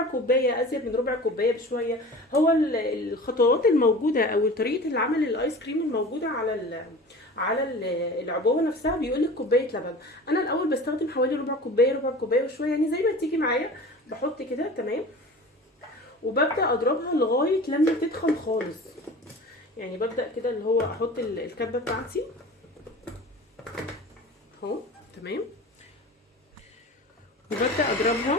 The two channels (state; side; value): normal; both; correlation 0.38